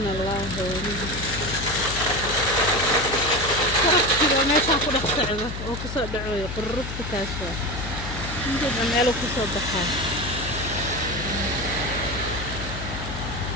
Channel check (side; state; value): left; noise; hum, 7 dB below the sound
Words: allahu barafkiiba meeshaan ku dhex socdo oo kusoo dhacoyo qururufta taas waa intiiba meelu kusoo baxaa